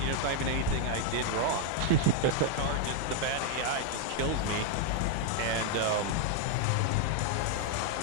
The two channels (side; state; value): both; different; correlation 0.01